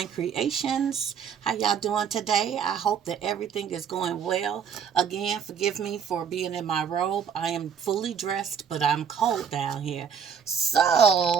Creations. How y'all doing today? I hope that everything is going well. Again, forgive me for being in my robe. I am fully dressed, but I'm cold down here.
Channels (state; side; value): quieter; left; 7.4 dB